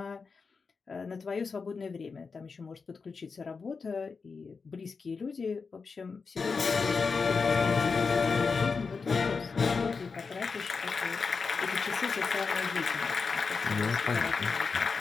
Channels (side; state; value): right; quieter; 4.9 dB